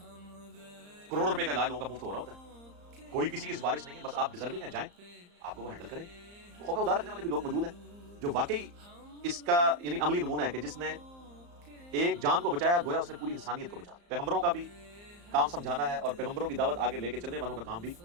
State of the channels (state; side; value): late; left; 34 ms